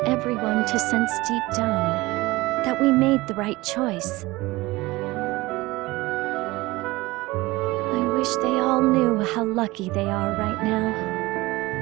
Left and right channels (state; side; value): quieter; left; 20.5 dB